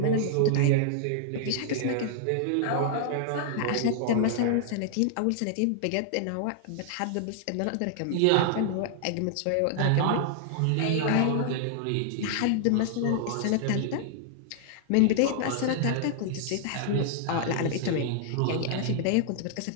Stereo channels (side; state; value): both; different; correlation -0.01